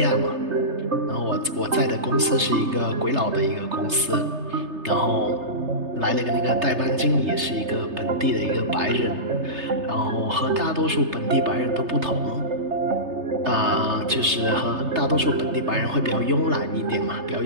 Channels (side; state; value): left; late; 3.3 ms